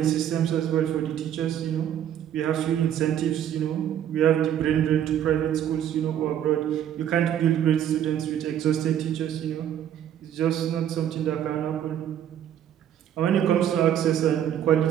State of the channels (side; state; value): left; quieter; 10.2 dB